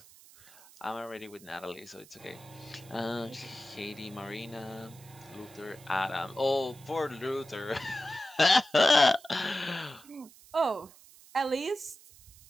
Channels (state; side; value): noise; right; hiss, 22 dB below the sound